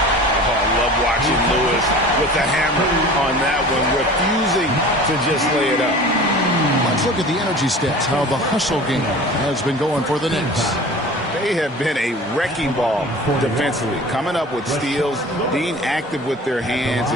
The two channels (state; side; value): normal; both; correlation 0.40